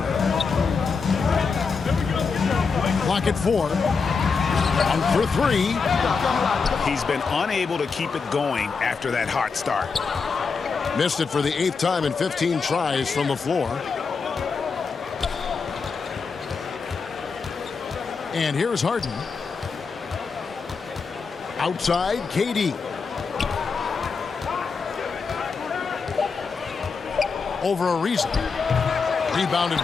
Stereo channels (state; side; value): quieter; right; 5.1 dB